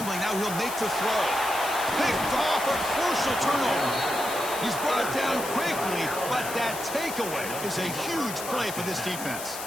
now he'll make the throw. Picked off, a crucial turnover. He's brought down quickly, but that takeaway is a huge play for this defense.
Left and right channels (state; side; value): noise; left; hiss, 9 dB below the sound